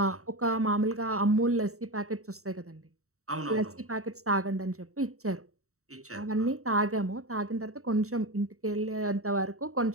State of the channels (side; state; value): left; late; 0.64 ms